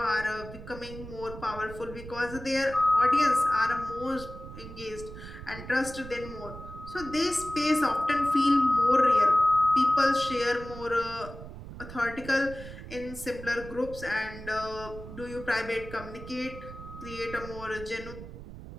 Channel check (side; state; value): right; noise; rumble, 13 dB below the sound